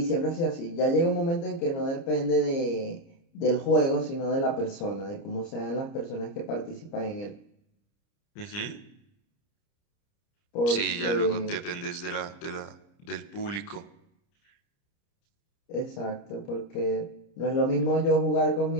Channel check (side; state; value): right; late; 30 ms